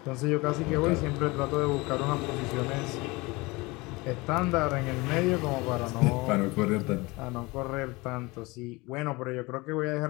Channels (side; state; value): right; quieter; 23.8 dB